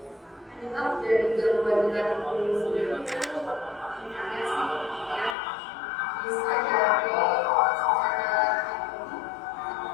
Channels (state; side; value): drops out; right; at 5.4 s